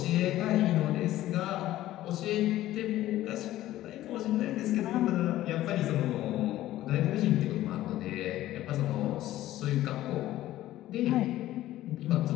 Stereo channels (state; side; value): quieter; right; 14.6 dB